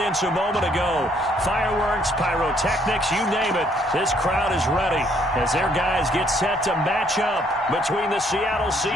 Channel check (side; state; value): both; normal; correlation 0.66